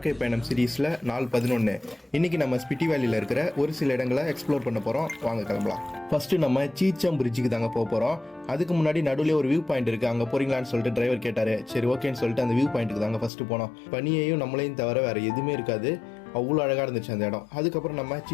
பயணம் சீரீஸில் நாள் 11. இன்றைக்கி நம்ம ஸ்பிட்டி வேலியில் இருக்கிற ஒரு சில இடங்களை எக்ஸ்ப்ளோர் பண்ண போகிறோம். வாங்க கிளம்பலாம். ஃபஸ்ட்டு நம்ம சீச்சம் பிரிட்ஜுக்கு தாங்க போக போகிறோம். அதுக்கு முன்னாடி நடுவில் ஒரு வியூ பாயிண்ட் இருக்குது, அங்கே போகிறீங்களான்னு சொல்லிட்டு டிரைவர் கேட்டார். சரி ஓகேன்னு சொல்லிட்டு அந்த வியூ பாயிண்ட்டுக்கு தாங்க ஃபஸ்ட்டு போனோம். பனியையும் நம்மளையும் தவிர வேறு எதுவுமே இருக்காது, அவ்வளோ அழகாக இருந்துச்சு அந்த இடம். அதுக்கப்புறம் நம்ம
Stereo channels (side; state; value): right; drops out; at 13.3 s